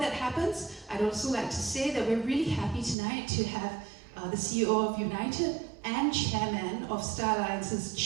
happens, I'd also like to say that we're really happy tonight to have the CEO of United and Chairman of Star Alliance's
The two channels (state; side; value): drops out; left; at 3.0 s